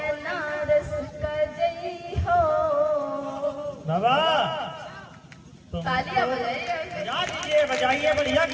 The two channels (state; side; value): identical; both; correlation 1.00